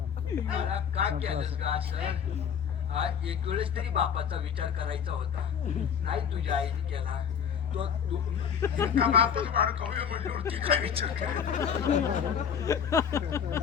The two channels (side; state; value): right; quieter; 7.7 dB